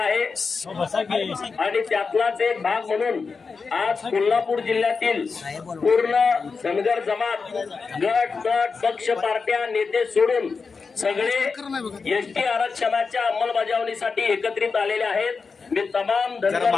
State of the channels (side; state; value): right; quieter; 4.9 dB